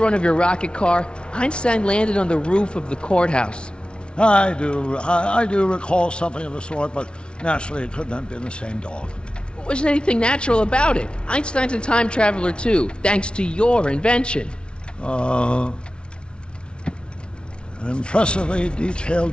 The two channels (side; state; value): right; late; 0.057 ms